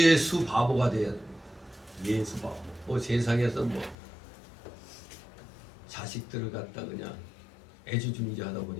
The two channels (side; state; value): right; drops out; at 4.0 s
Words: 바보가 돼야 됩니다. 예수 바보. 뭐 세상에서 뭐 자식들을 갖다 그냥 애지중지하다